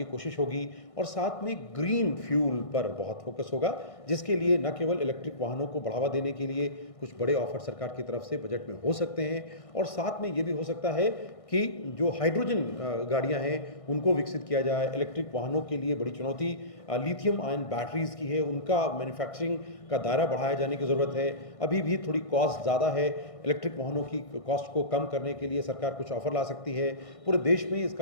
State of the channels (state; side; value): late; right; 1.6 ms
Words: कोशिश होगी और साथ में ग्रीन फ्यूल पर बहुत फोकस होगा, जिसके लिए न केवल इलेक्ट्रिक वाहनों को बढ़ावा देने के लिए कुछ बड़े ऑफर सरकार की तरफ से बजट में हो सकते हैं और साथ में ये भी हो सकता है कि जो हाइड्रोजन गाड़ियाँ हैं उनको विकसित किया जाए। इलेक्ट्रिक वाहनों के लिए बड़ी चुनौती लिथियम आयन बैटरीज की है, उनका मैन्युफैक्चरिंग का दायरा बढ़ाया जाने की ज़रूरत है। अभी भी थोड़ी कॉस्ट ज़्यादा है, इलेक्ट्रिक वाहनों की कॉस्ट को कम करने के लिए सरकार कुछ ऑफर ला सकती है। पूरे देश में